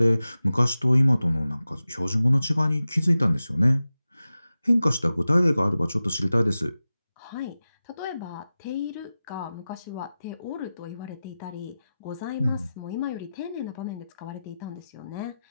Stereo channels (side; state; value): both; inverted; correlation -0.94